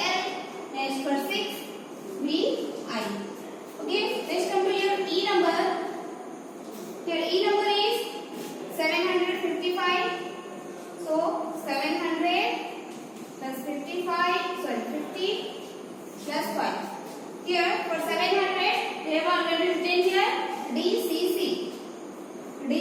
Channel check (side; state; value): both; identical; correlation 1.00